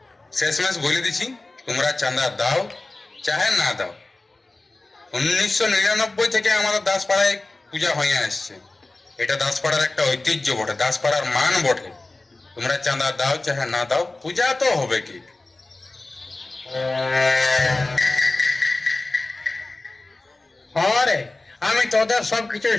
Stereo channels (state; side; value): quieter; right; 3.1 dB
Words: শেষমেশ বলে দিছি, তোমরা চাঁদা দাও চাহে না দাও। 1999 থেকে আমাদের দাসপাড়ায় পূজা হয়ে আসছে। এটা দাসপাড়ার একটা ঐতিহ্য বটে, দাসপাড়ার মান বটে। তোমরা চাঁদা দাও চাহে না দাও, পূজা তো হবে কি। হ্যাঁ রে, আমি তোদের সব কিছু